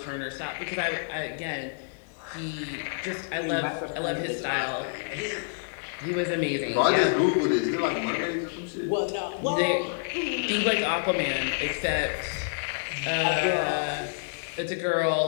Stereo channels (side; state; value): right; silent; digital silence